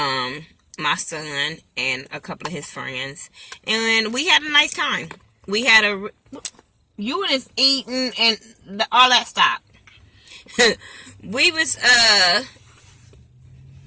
my son, and a couple of his friends, and we had a nice time. We had you was eating and all that stuff. we had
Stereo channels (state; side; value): identical; both; correlation 1.00